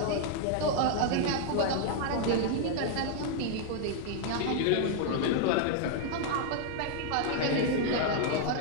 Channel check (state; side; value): different; both; correlation 0.00